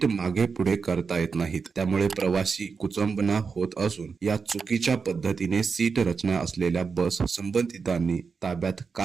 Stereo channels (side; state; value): left; quieter; 5.3 dB